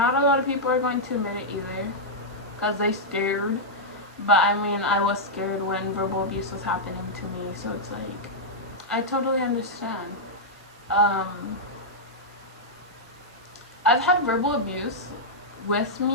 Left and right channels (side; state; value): both; normal; correlation -0.07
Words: a lot of people are going to admit it either, because they scared. But I mean, I was scared when verbal abuse was happening to me, so it's like, I totally understand. I've had verbal abuse with